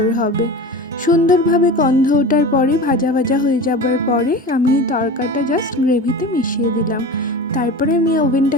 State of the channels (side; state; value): both; normal; correlation 0.32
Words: হবে। সুন্দরভাবে গন্ধ ওঠার পরে ভাজা ভাজা হয়ে যাবার পরে আমি তরকাটা জাস্ট গ্রেভিতে মিশিয়ে দিলাম। তারপরে আমি